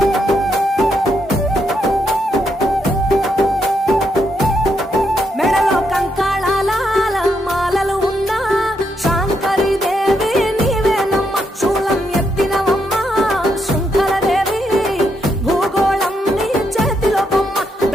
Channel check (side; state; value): both; normal; correlation 0.79